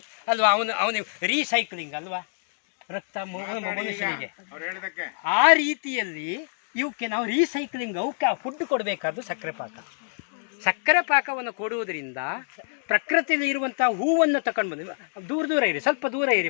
ಅಲ್ವಾ. ಅವನಿಗೆ ರೀಸೈಕ್ಲಿಂಗ್ ಅಲ್ವಾ ರಕ್ತ ಮನುಷ್ಯನಿಗೆ. ಆ ರೀತಿಯಲ್ಲಿ ಇವಕ್ಕೆ ನಾವು ರೀಸೈಕ್ಲಿಂಗ್, ಅವಕ್ಕೆ ಫುಡ್ ಕೊಡಬೇಕಾದ್ದು ಸಕ್ಕರೆ ಪಾಕ. ಸಕ್ಕರೆ ಪಾಕವನ್ನು ಕೊಡುವುದರಿಂದ ಪ್ರಕೃತಿಯಲ್ಲಿ ಇರುವಂತಹ ಹೂವನ್ನು ತಕೊಂಡು ಬಂದು, ದೂರ ಇರಿ, ಸ್ವಲ್ಪ ದೂರ ಇರಿ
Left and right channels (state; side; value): silent; right; digital silence